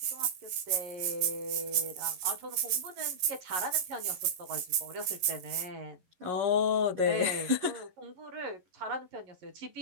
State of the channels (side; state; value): left; late; 11 ms